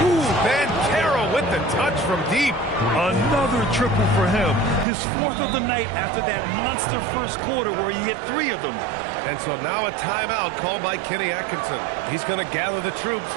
Ooh, Banchero with the touch from deep. Another triple for him. His 4th of the night after that monster first quarter where he hit 3 of them. And so now a timeout called by Kenny Atkinson. He's going to gather the troops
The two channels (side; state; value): left; drops out; at 4.9 s